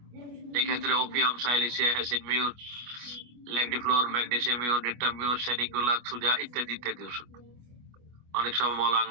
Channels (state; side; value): late; left; 25 ms